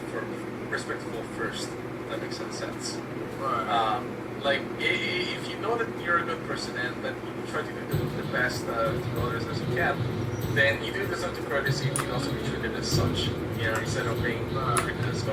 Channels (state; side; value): identical; both; correlation 1.00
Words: first. If that makes sense. Right. If you know that you're a good person and that you try to do the best to others as you can, then you do deserve to courtesy and you can also be treated as such, instead of being treated as